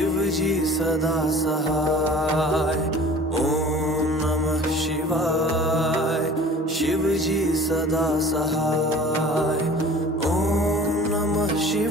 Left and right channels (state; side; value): normal; both; correlation 0.45